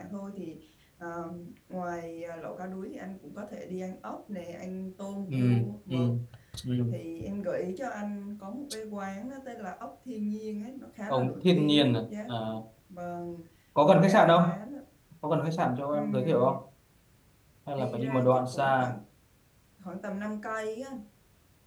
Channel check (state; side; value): identical; both; correlation 1.00